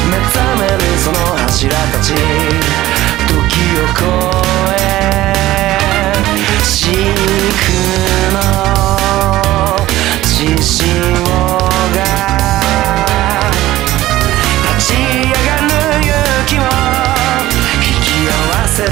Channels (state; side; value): quieter; left; 15.8 dB